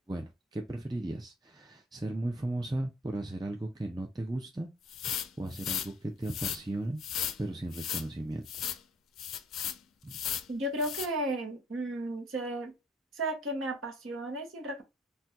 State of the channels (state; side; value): normal; both; correlation 0.57